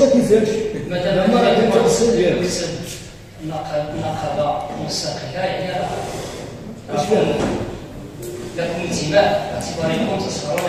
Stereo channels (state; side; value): identical; both; correlation 1.00